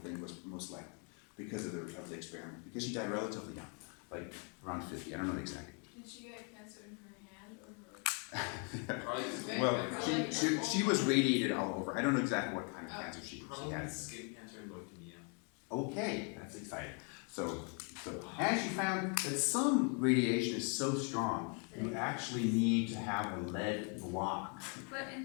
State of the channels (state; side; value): quieter; right; 37.9 dB